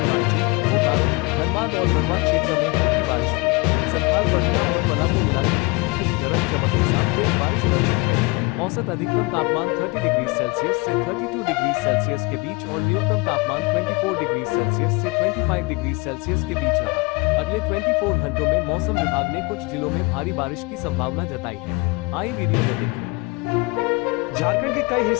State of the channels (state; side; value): quieter; right; 26.7 dB